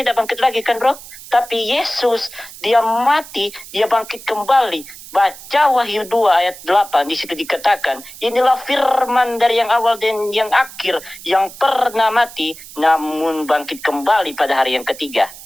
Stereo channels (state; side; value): noise; right; hiss, 16 dB below the sound